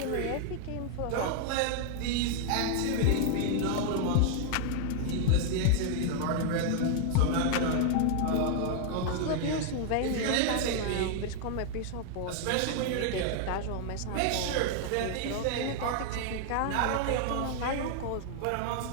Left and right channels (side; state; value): both; different; correlation 0.00